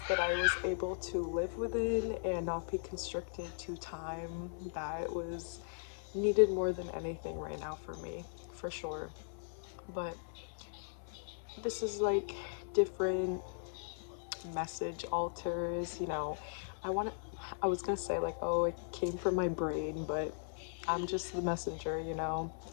that I was able to live within and not be constricted to time, that was needed more than anything right now for me, for sure. But this is like different message alters, I was gonna say like, oh, it came from my brain, but I'm just the messenger,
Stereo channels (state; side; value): silent; right; 52 dB below the other